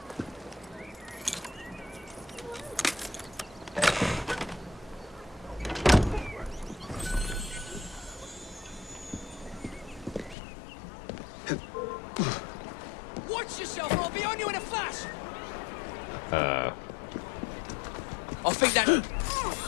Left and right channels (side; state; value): right; drops out; at 10.4 s